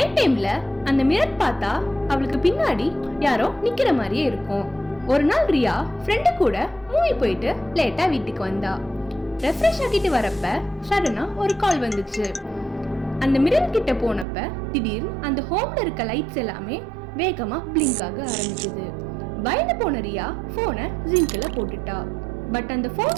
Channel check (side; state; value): left; drops out; at 14.2 s